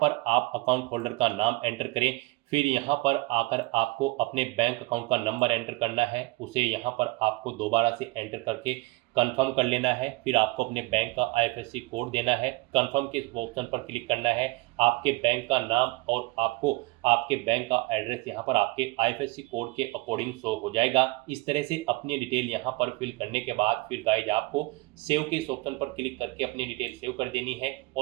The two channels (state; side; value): quieter; left; 22.2 dB